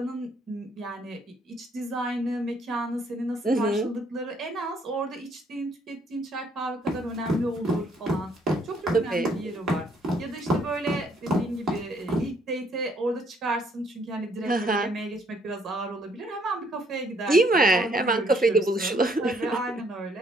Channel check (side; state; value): both; normal; correlation 0.67